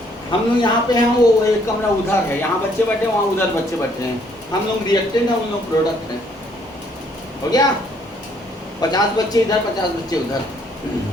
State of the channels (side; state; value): both; normal; correlation 0.66